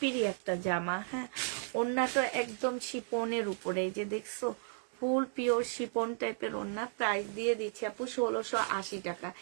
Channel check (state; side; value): silent; left; 55 dB below the other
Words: একটা জামা। হ্যাঁ, ওড়নাটা একদম শিপনের উপরে, এই যে দেখছো ফুল পিওর শিপন টাইপের ওড়না। প্রাইস দিয়ে দিচ্ছি আপু 1680 টাকা।